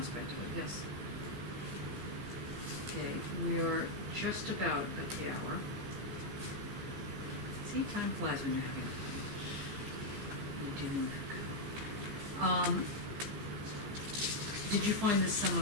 of it, yes. Okay, we are just about at the hour. See, time flies when you're having fun. You're dealing with Foucault. Did you find this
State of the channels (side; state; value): left; late; 15 ms